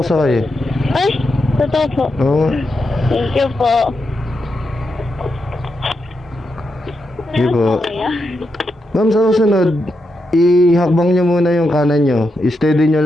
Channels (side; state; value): both; normal; correlation 0.85